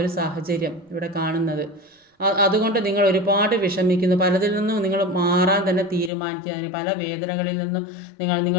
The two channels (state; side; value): drops out; right; at 6.1 s